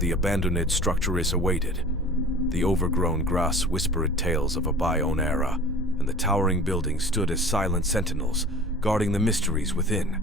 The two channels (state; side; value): normal; both; correlation 0.42